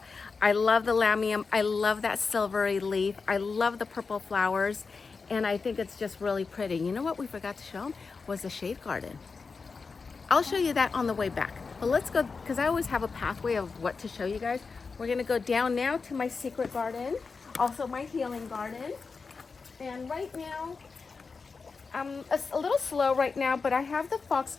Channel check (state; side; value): quieter; right; 4.7 dB